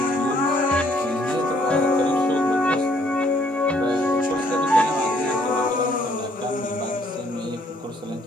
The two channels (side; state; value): both; normal; correlation 0.65